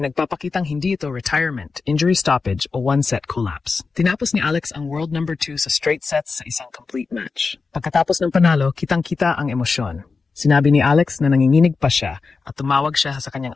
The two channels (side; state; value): right; quieter; 4.5 dB